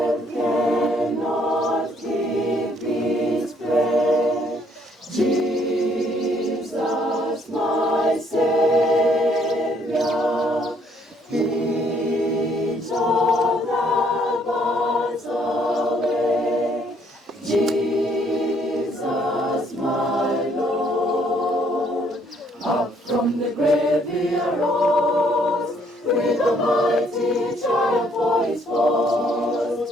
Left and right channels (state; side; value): normal; both; correlation 0.66